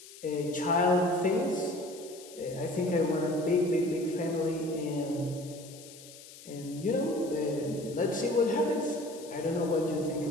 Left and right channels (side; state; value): left; noise; hiss, 18 dB below the sound